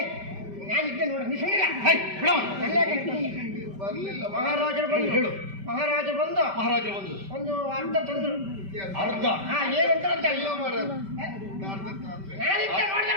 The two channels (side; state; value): left; late; 5.1 ms